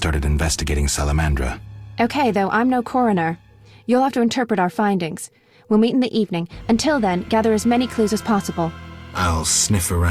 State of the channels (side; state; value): both; identical; correlation 1.00